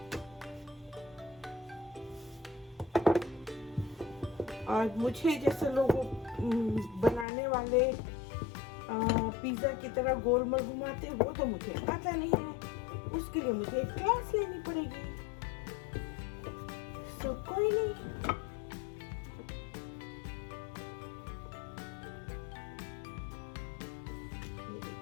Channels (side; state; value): right; drops out; at 7.2 s